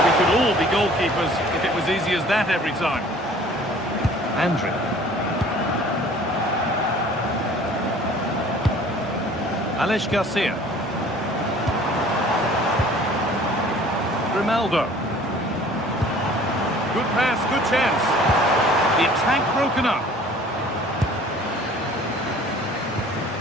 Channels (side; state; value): both; normal; correlation 0.50